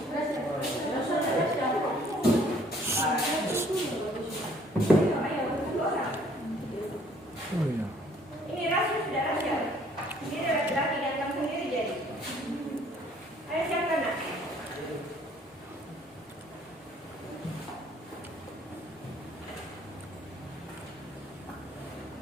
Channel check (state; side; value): normal; both; correlation 0.60